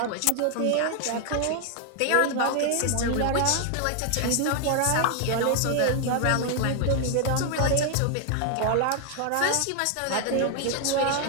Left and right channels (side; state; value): both; different; correlation 0.00